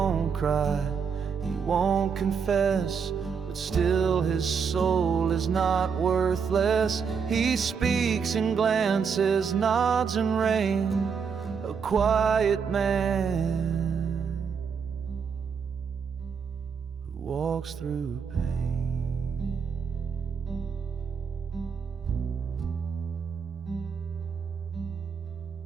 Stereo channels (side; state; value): left; quieter; 6.3 dB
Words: cry, he won't confess, but still his soul is not worthless. He speaks in glances, nods and rain, a quiet man who walks through pain.